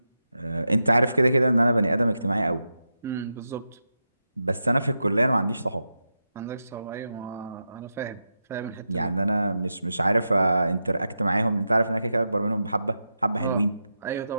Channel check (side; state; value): both; inverted; correlation -0.88